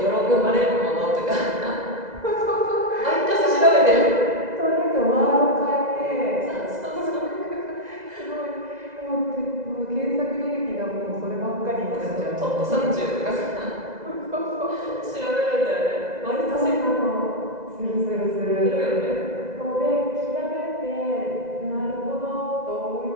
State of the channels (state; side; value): late; left; 2.0 ms